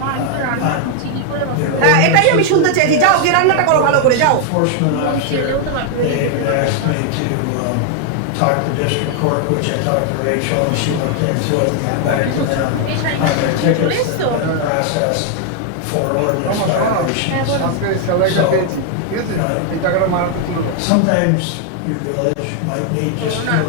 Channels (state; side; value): different; both; correlation 0.00